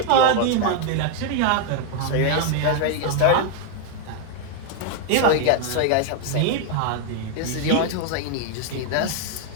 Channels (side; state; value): both; different; correlation 0.00